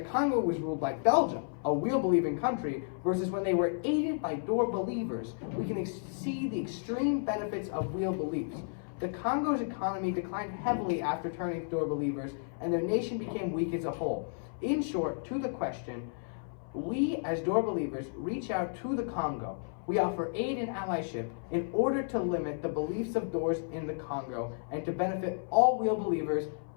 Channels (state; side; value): silent; right; 56 dB below the other